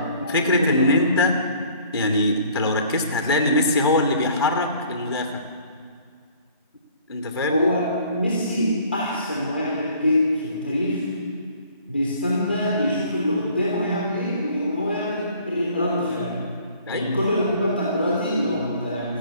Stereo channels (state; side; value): inverted; both; correlation -0.54